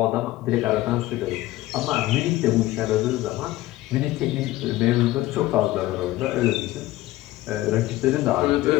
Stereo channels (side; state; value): right; quieter; 16.9 dB